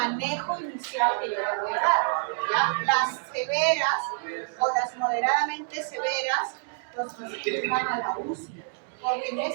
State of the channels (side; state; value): left; silent; digital silence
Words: inicial que yo le voy a dar, ¿ya? Las severas o las moderadamente severas, los pacientes van a la UCI, porque en